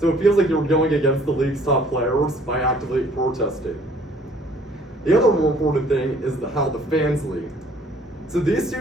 so it feels like you're going against the league's top players by actively protesting. The other more important thing is how the fans lead. So these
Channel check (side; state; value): both; normal; correlation 0.57